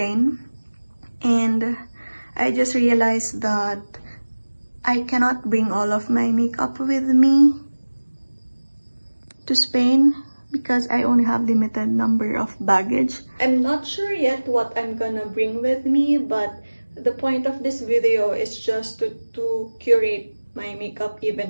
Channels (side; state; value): both; inverted; correlation -1.00